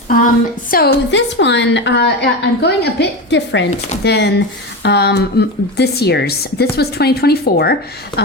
So this one, I'm going a bit different than this year's. This was 2024.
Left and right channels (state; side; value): normal; both; correlation 0.21